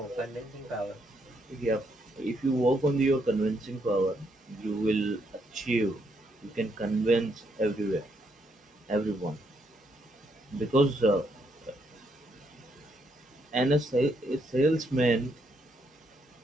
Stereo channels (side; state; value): both; normal; correlation 0.75